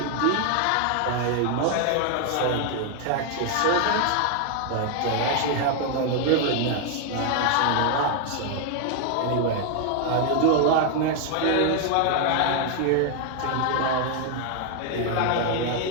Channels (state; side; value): different; both; correlation 0.00